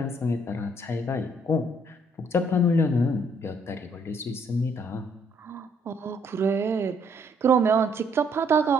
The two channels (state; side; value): normal; both; correlation 0.67